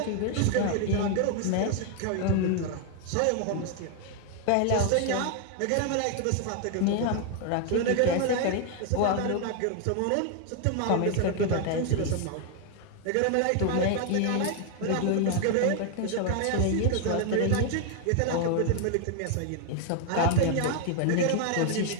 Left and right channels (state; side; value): different; both; correlation 0.00